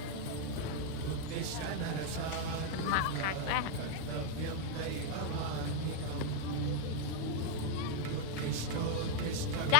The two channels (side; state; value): both; different; correlation 0.00